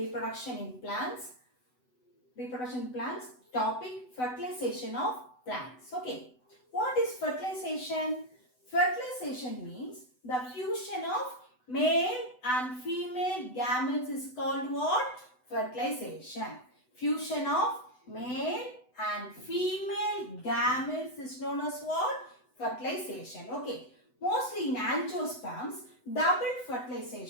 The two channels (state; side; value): late; right; 8.0 ms